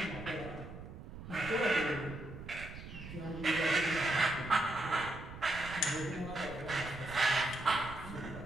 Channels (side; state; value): right; noise; rumble, 12 dB below the sound